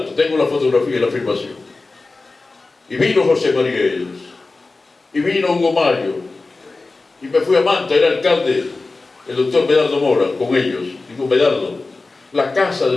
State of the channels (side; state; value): right; quieter; 3.5 dB